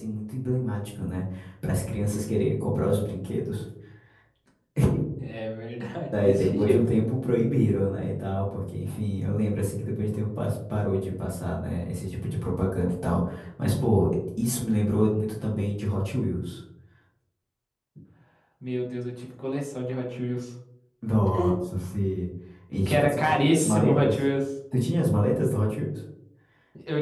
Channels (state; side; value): identical; both; correlation 1.00